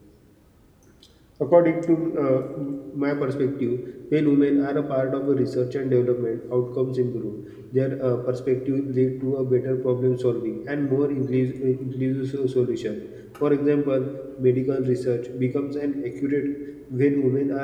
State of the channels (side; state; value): both; identical; correlation 1.00